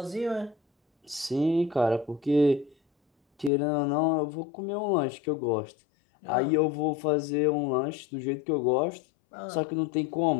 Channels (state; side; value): drops out; right; at 3.5 s